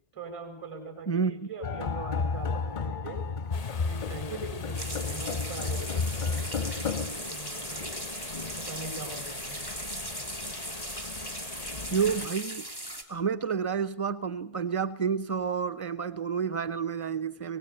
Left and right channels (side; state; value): right; late; 1.1 ms